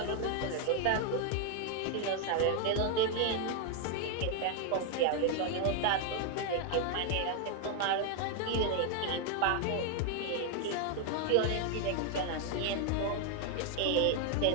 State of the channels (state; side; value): different; both; correlation 0.01